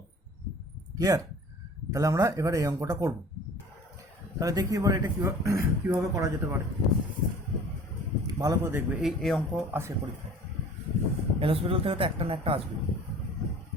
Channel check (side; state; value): both; normal; correlation 0.46